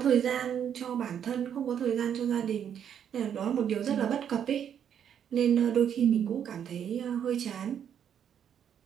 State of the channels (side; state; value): left; quieter; 8.8 dB